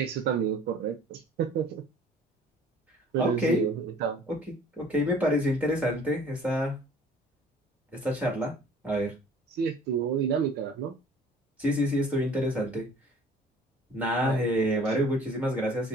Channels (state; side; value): normal; both; correlation 0.51